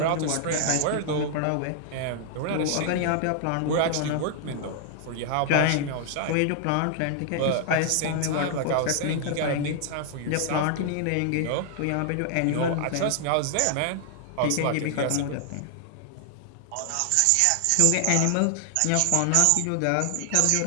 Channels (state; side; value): different; both; correlation 0.00